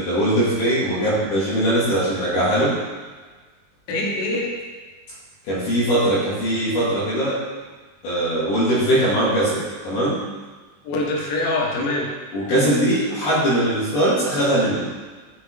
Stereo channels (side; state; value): right; late; 21 ms